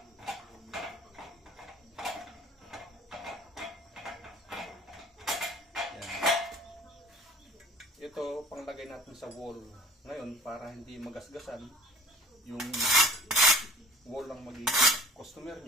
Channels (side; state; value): both; normal; correlation 0.47